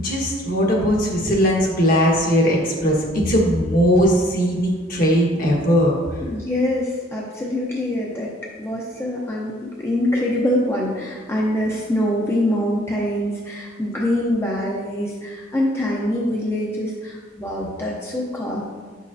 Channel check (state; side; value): normal; both; correlation 0.59